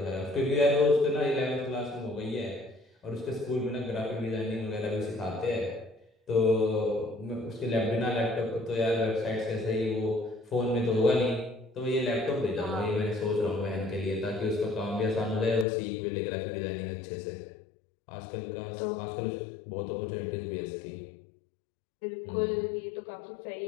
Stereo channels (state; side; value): drops out; right; at 15.7 s